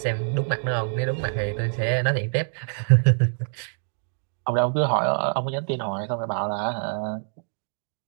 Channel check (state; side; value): silent; left; digital silence